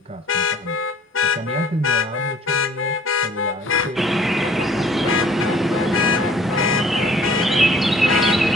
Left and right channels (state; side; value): normal; both; correlation 0.55